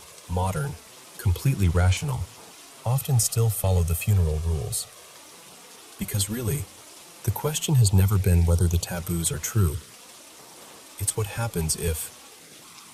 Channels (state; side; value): identical; both; correlation 1.00